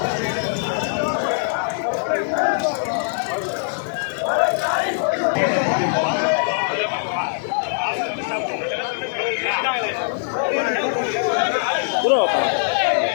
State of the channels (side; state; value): right; silent; 64 dB below the other